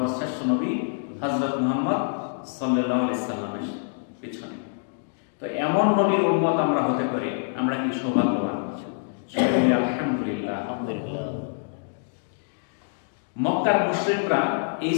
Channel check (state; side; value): silent; right; digital silence